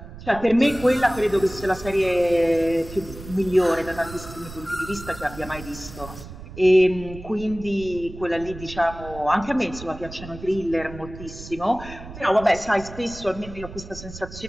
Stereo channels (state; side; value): noise; right; rumble, 14 dB below the sound